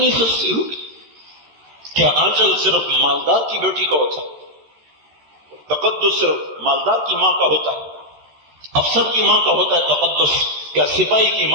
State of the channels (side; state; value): left; late; 13 ms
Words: سستی ہوگی. کیا آنچل صرف مالدار کی بیٹی کا ہوتا ہے؟ تقدس صرف مالدار کی ماں کا ہوتا ہے؟ افسر کی ماں کا ہوتا ہے تقدس؟ کیا سپاہی کی